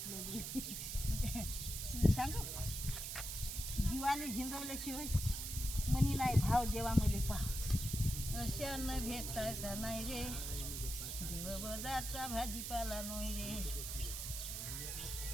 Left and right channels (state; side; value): noise; right; hiss, 5 dB below the sound